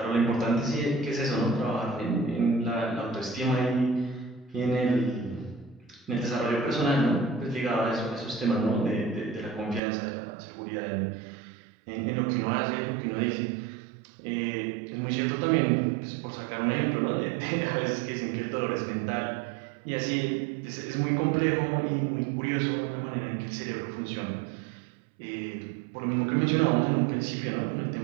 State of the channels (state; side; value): drops out; left; at 9.8 s